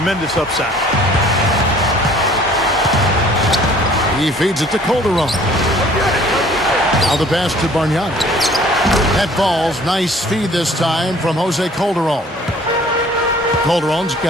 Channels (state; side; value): normal; both; correlation 0.53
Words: upside. He feeds it to Calderon. Now the pass to Bargnani. That ball's nice feed this time from Jose Calderon. Calderon's